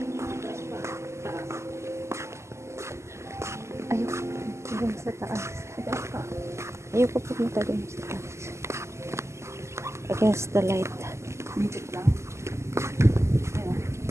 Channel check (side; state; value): left; late; 0.13 ms